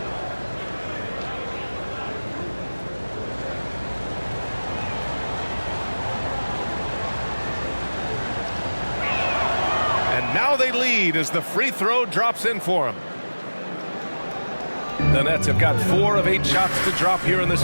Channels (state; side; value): inverted; both; correlation -1.00